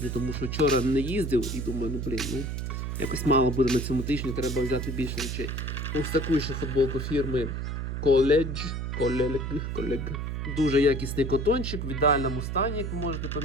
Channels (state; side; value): noise; right; hum, 3 dB below the sound